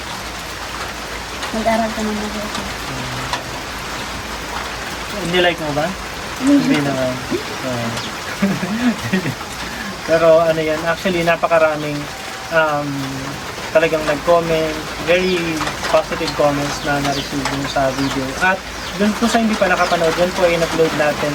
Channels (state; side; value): identical; both; correlation 1.00